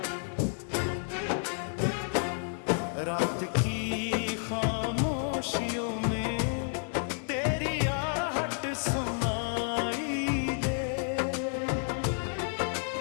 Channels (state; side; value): silent; right; 57 dB below the other